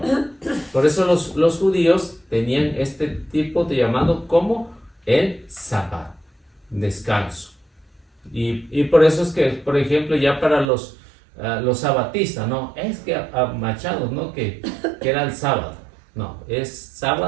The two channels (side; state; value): left; drops out; at 10.7 s